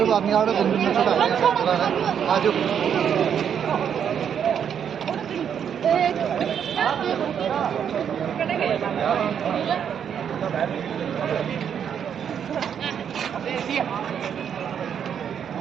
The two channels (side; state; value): left; quieter; 8.2 dB